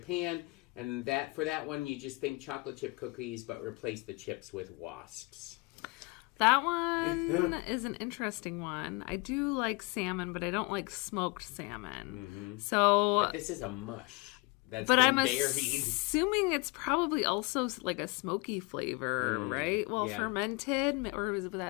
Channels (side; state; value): right; quieter; 26.5 dB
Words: and for that one you just think chocolate chip cookies but replace the chips with wasps? That one is an interesting one. I do like salmon, but I don't like smoked salmon. Mm-hmm. But this is a mush that's been buried. Assuming it's probably also like a smoky flavor, right? Well, fermented, or would